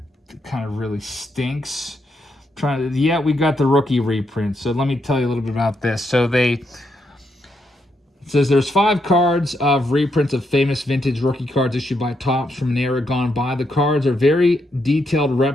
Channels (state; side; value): normal; both; correlation 0.79